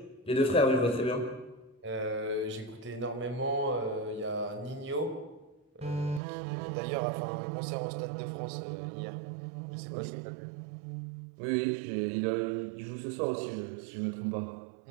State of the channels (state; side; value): drops out; left; at 6.2 s